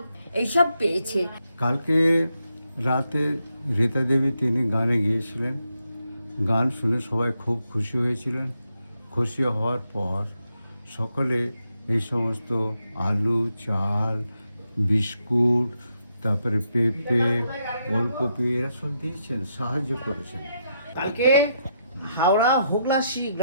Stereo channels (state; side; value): inverted; both; correlation -0.80